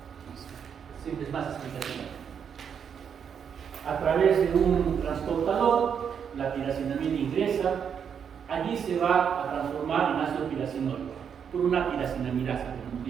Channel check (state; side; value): quieter; left; 7.5 dB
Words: siempre es más explicativa. A través de un transportador, la piracinamida ingresa. Allí se va a transformar en ácido piracinoico por una piracenamirasa, como hemos